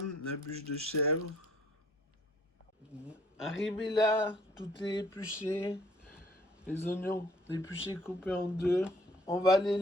la bûche de chèvre. Arrivé là, tout est épluché. Les oignons épluchés coupés en deux. On va les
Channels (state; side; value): normal; both; correlation 0.59